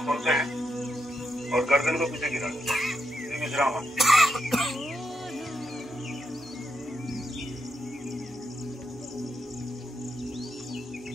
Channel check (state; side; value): normal; both; correlation 0.83